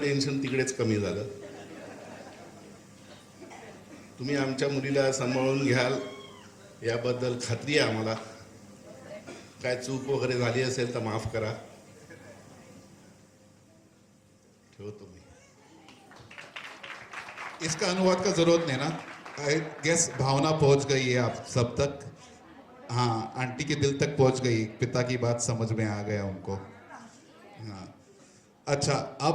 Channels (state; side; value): identical; both; correlation 1.00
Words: तिकडेच कमी झालं. तुम्ही आमच्या मुलीला सांभाळून घ्याल याबद्दल खात्री आहे आम्हाला. काय चूक वगैरे झाली असेल तर माफ करा. ठेवतो मी. इसका अनुवाद का जरूरत नहीं ना. आई गेस भावना पहुंच गई है आप सब तक. हाँ, आंटी के दिल तक पहुंच गई. पिता की बात समझ में आ गया उनको. हाँ, अच्छा,